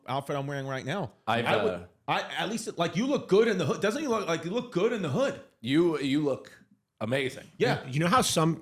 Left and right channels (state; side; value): identical; both; correlation 1.00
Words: wearing right now. I at least like you look good in the hood. Doesn't he look like you look good in the hood? You look amazing. Yeah. You know how some